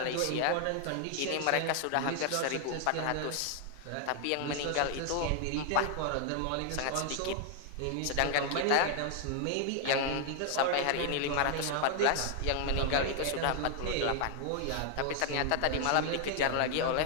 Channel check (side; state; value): both; different; correlation 0.00